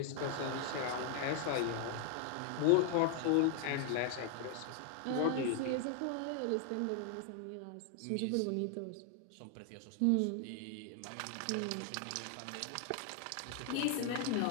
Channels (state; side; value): different; both; correlation 0.00